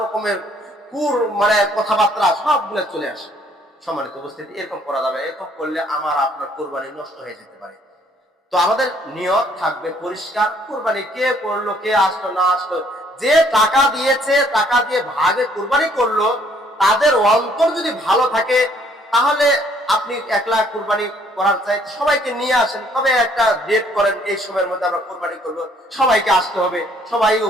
রকমের মানে কথাবার্তা সবগুলো চলে আসে। সম্মানিত উপস্থিতি, এরকম করা যাবে, এরকম করলে আমার আপনার কুরবানি নষ্ট হয়ে যেতে পারে। তো আমাদের নিয়ত থাকবে পরিষ্কার। কুরবানি কে করলো, কে আসলো না আসলো, যে টাকা দিয়েছে, টাকা দিয়ে ভাগে কুরবানি করলো, তাদের অন্তর যদি ভালো থাকে, তাহলে আপনি একলা কুরবানি করার চাই সবাইকে নিয়ে আসেন, তবে একটা ডেট করেন, এই সময়ের মধ্যে আমরা কুরবানি করব, সবাইকে আসতে হবে, সবাই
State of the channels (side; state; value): both; normal; correlation 0.63